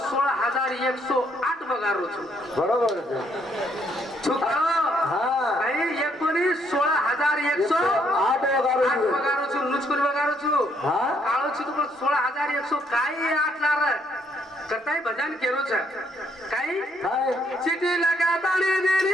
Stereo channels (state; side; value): normal; both; correlation 0.70